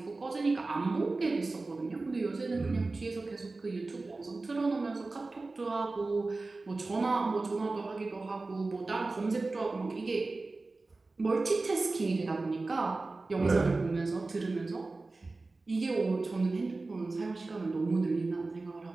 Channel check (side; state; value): left; quieter; 3.4 dB